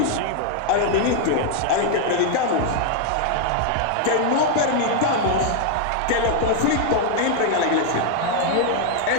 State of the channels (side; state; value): both; different; correlation 0.00